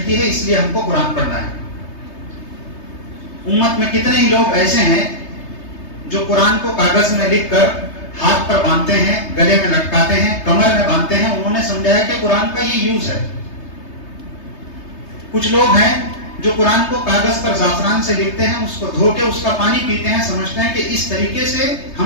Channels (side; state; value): right; late; 3.3 ms